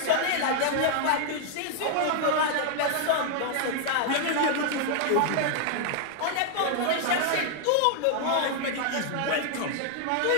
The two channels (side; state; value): both; different; correlation 0.00